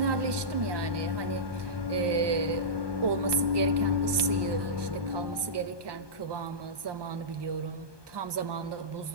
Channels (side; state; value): left; late; 1.2 ms